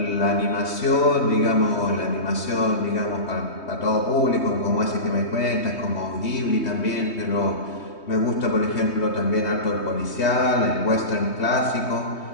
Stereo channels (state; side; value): late; right; 3.2 ms